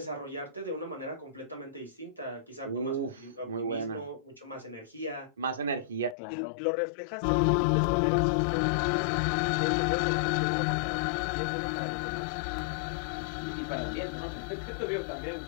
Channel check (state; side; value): drops out; right; at 6.2 s